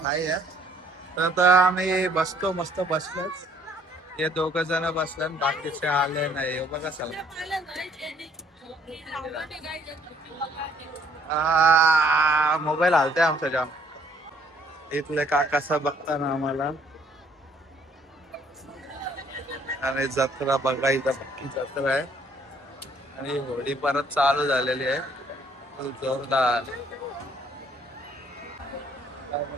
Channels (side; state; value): both; normal; correlation 0.63